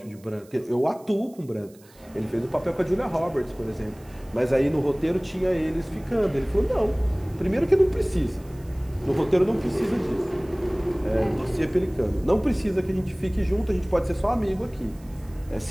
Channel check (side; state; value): right; noise; hiss, 27 dB below the sound